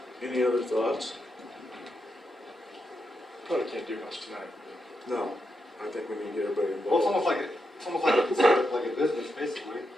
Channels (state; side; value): normal; both; correlation 0.84